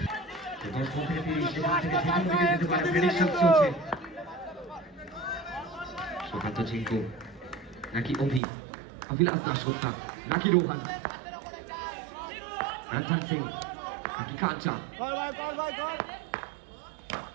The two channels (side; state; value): left; drops out; at 8.4 s